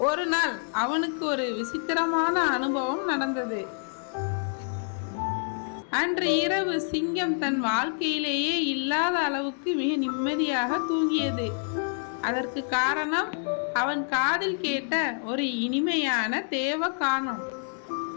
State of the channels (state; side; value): silent; right; 60 dB below the other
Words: ஒரு நாள் அவனுக்கு ஒரு விசித்திரமான அனுபவம் நடந்தது. அன்று இரவு சிங்கம் தன் வாழ்க்கையிலேயே இல்லாத அளவுக்கு மிக நிம்மதியாக தூங்கியது. அதற்கு காரணம் அவன் காதில் கேட்ட ஒரு இனிமையான தேவகானம்.